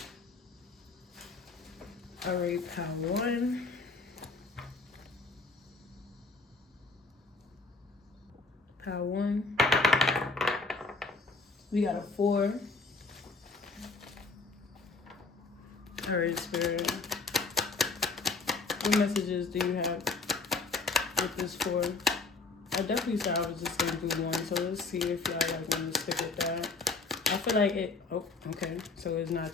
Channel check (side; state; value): right; quieter; 4.0 dB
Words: All right, pile 1. Pile 1. We got a 4. All right, Spirit. What messages do you have with this 4? I definitely said I was just going to do 1, so let's see if y'all like want to stick with that. I feel like it, oh, okay, so it's not